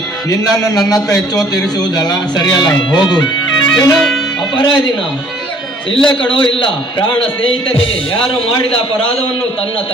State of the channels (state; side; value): normal; both; correlation 0.57